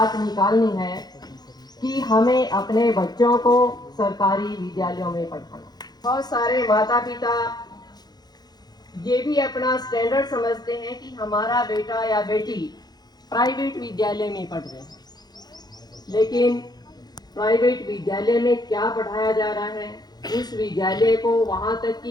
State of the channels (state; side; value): late; right; 0.20 ms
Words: निकालनी है कि हमें अपने बच्चों को सरकारी विद्यालयों में पढ़ाना। बहुत सारे माता पिता ये भी अपना स्टैंडर्ड समझते हैं कि हमारा बेटा या बेटी प्राइवेट विद्यालय में पढ़ रहे हैं, लेकिन प्राइवेट विद्यालय में क्या पढ़ाया जा रहा है, उस विद्यालय को वहाँ तक